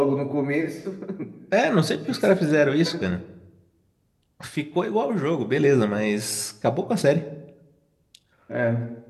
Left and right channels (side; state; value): both; identical; correlation 1.00